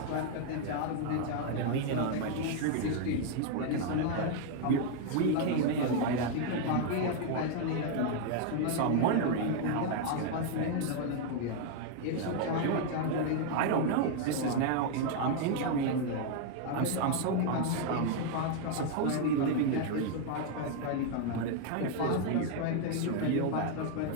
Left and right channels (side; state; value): both; different; correlation 0.00